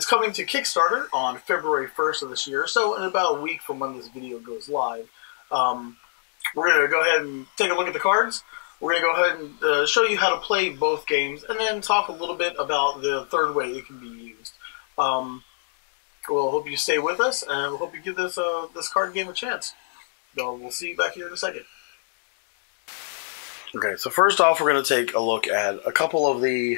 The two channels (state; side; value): silent; right; digital silence